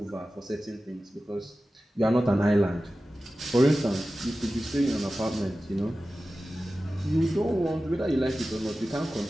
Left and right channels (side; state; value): both; normal; correlation 0.95